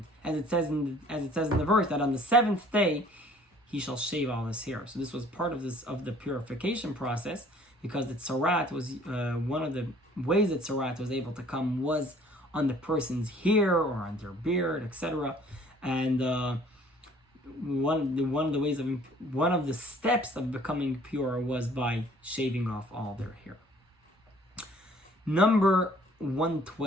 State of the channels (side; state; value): both; normal; correlation 0.55